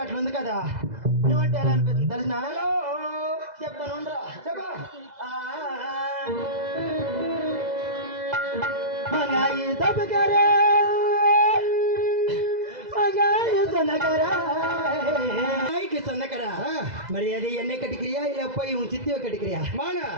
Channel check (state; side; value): late; left; 2.0 ms